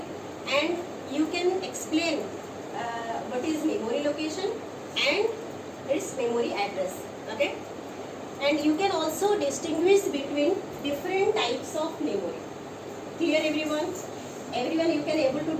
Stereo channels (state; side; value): identical; both; correlation 1.00